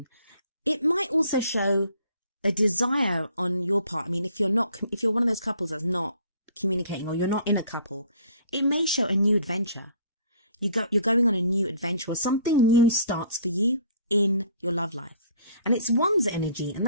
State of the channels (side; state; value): both; inverted; correlation -0.56